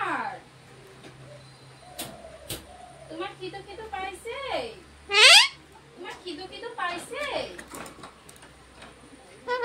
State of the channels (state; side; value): identical; both; correlation 1.00